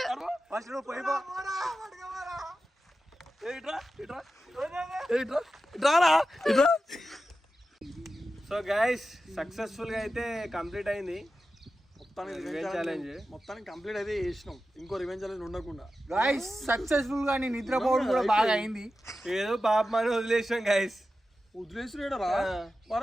ఫస్ట్ నువ్వు పోయి పో. ఇట్రా ఇట్రా ఇట్రా ఇట్రారా ఇట్రా. సో గైస్ సక్సెస్ఫుల్ గా అయితే కంప్లీట్ అయింది ఛాలెంజ్. మొత్తానికి కంప్లీట్ అయితే చేసినాం. ఇంకో రివెంజ్ ఛాలెంజ్ ఉండకుండా గాయస్ సక్సెస్ఫుల్ గా నేను నిద్రపోవడం కూడా బాగా అయింది. ఏదో పాపం అని వదిలేసాం గైస్. వదిలేసిరా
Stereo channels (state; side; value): normal; both; correlation 0.92